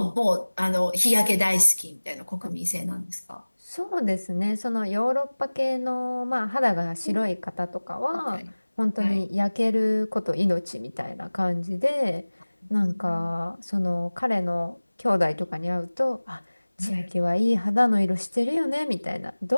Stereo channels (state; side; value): inverted; both; correlation -1.00